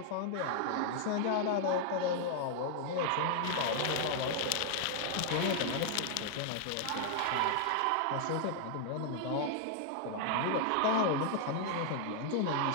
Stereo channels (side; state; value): both; different; correlation 0.00